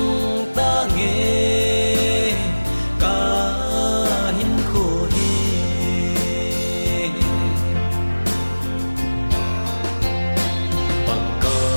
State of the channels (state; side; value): inverted; both; correlation -1.00